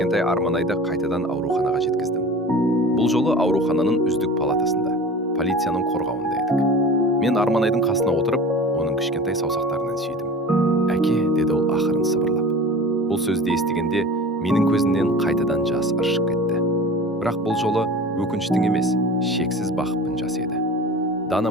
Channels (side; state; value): both; normal; correlation 0.37